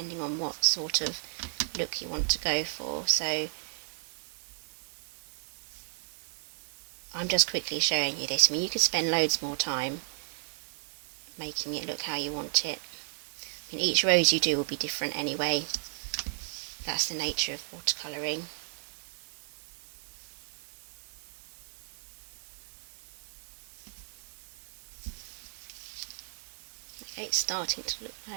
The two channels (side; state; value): left; silent; digital silence